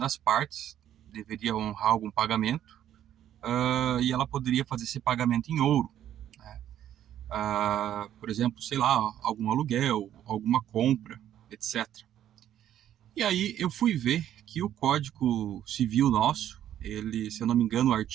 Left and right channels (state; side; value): quieter; left; 11.1 dB